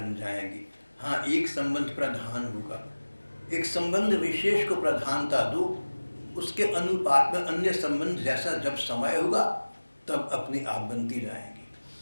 जाएंगे। हाँ, एक संबंध प्रधान होगा, एक संबंध विशेष को प्रधानता दो, उसके अनुपात में अन्य संबंध जैसा जब समय होगा तब अपने आप बनती जाएंगे।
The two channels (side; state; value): both; inverted; correlation -1.00